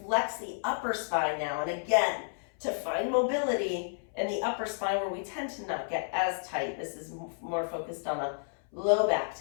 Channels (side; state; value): right; silent; 57 dB below the other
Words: the upper spine now, and again, to find mobility in the upper spine where we tend to not get as tight. This is more focused on a low back